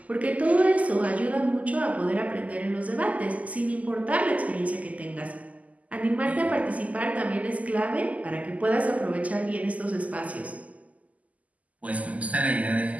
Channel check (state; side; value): late; left; 0.073 ms